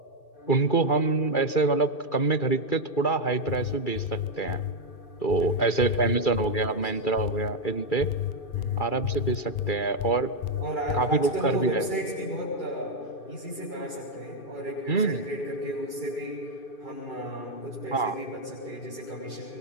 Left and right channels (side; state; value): right; late; 2.3 ms